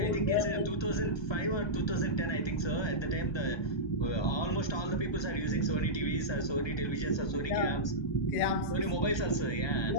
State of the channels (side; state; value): right; late; 1.2 ms